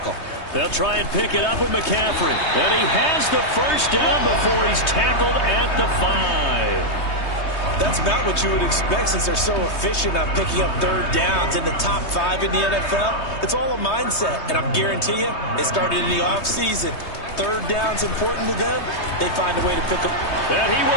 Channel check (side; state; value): right; late; 3.2 ms